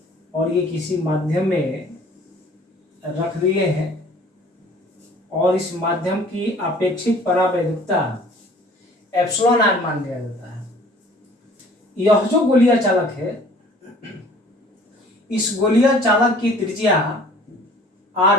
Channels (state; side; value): normal; both; correlation 0.51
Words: और ये किसी माध्यम में रख दिए हैं और इस माध्यम की अपेक्षित परावैद्युता एप्सिलॉन आर मान लिया जाता है। यह जो गोलीय चालक है, इस गोलीय चालक की त्रिज्या